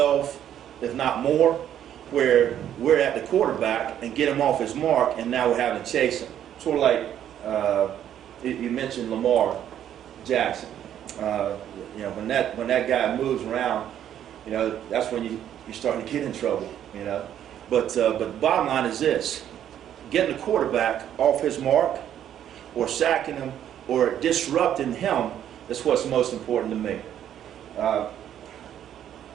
if not more, where we're at the quarterback and get him off his mark, and now we're having to chase him. Sort of like you mentioned Lamar Jackson. When that guy moves around, that's when you're starting to get in trouble. But bottom line is this: getting the quarterback off his mark, or sacking him, or disrupting him. That's what's most important to me.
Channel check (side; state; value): left; quieter; 10.4 dB